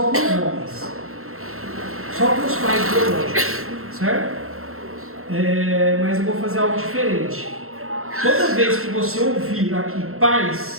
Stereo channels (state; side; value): late; left; 0.62 ms